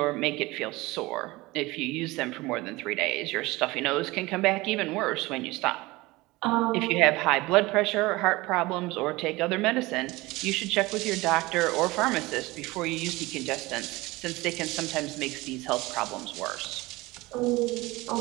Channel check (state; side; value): quieter; left; 21.2 dB